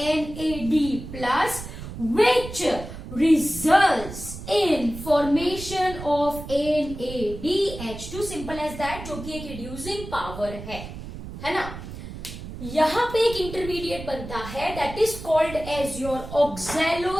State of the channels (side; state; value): right; noise; rumble, 11 dB below the sound